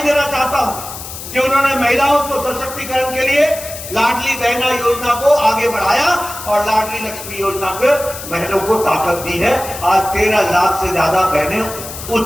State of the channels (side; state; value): left; noise; hiss, 11 dB below the sound